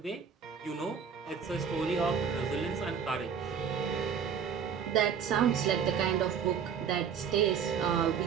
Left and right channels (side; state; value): left; quieter; 7.1 dB